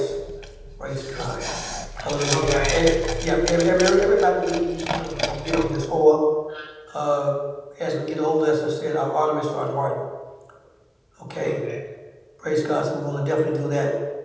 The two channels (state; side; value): identical; both; correlation 1.00